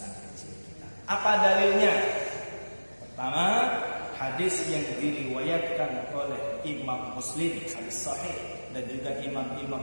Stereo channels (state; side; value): inverted; both; correlation -1.00